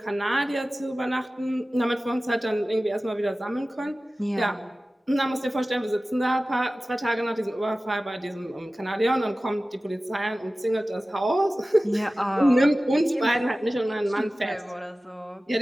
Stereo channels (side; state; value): both; normal; correlation 0.96